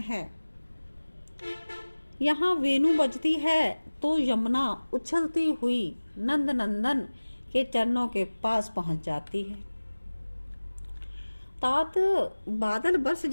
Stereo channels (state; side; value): inverted; both; correlation -1.00